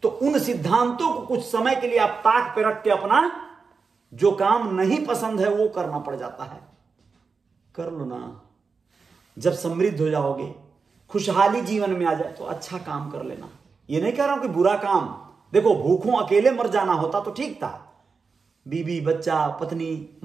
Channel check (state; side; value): quieter; left; 4.9 dB